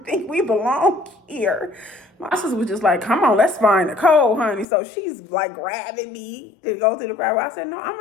think we belong here. My sister was just like, come on, let's find Nicole, honey. So she's like grabbing me to go to the crowd. I said, no, I'm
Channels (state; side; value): drops out; right; at 4.7 s